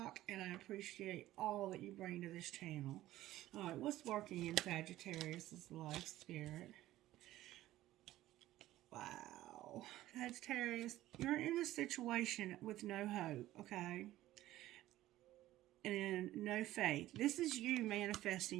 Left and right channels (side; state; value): left; quieter; 15.1 dB